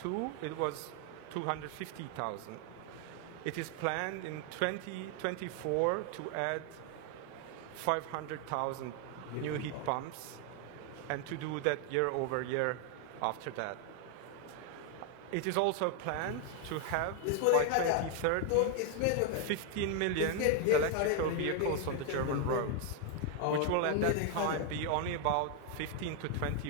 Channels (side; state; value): both; different; correlation 0.00